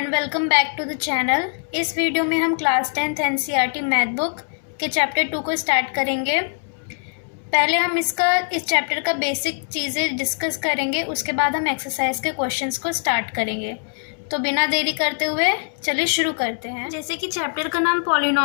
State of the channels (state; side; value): silent; right; 56 dB below the other